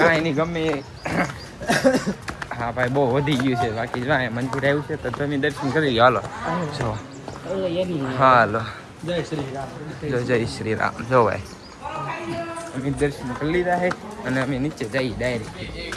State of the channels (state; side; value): identical; both; correlation 1.00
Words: નહીં ગમે. હા ભાઈ બહુ વધી ગયું છે. બાકી જો મંદિર આવ્યું છે તો તમે દર્શન કરી લો. હાલો જો હાલો જય શ્રી રામ. જો ભાઈ અમે દર્શન કરી લીધા છે અને અમે નીચે જઈએ ડાયરેક્ટ.